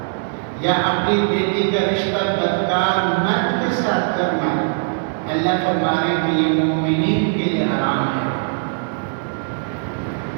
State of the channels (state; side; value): silent; left; 55 dB below the other